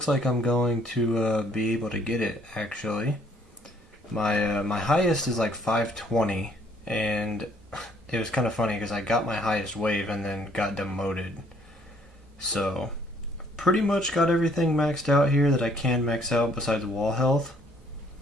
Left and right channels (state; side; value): normal; both; correlation 0.64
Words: like I'm going to be able to get it, actually. My highest is like 520, and it was kind of funny because I got my highest wave and then got demoted. So pretty much got everything maxed out here that I can max out besides wall health.